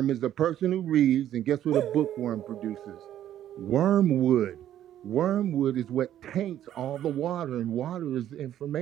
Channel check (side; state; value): left; quieter; 11.5 dB